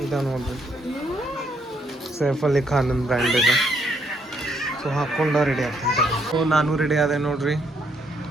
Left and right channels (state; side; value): normal; both; correlation 0.72